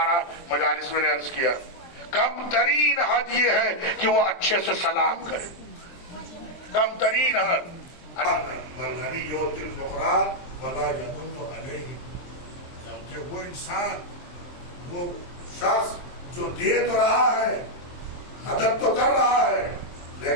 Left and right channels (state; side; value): late; right; 23 ms